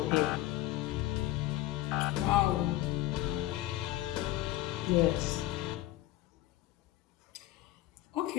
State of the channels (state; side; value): quieter; right; 15.8 dB